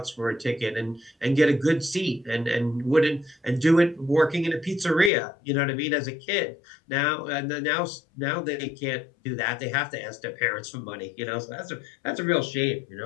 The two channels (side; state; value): right; drops out; at 5.1 s